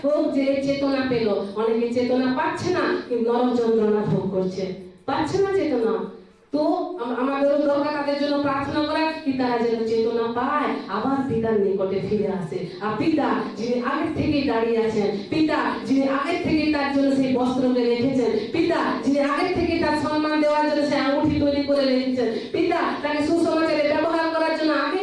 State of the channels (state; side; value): identical; both; correlation 1.00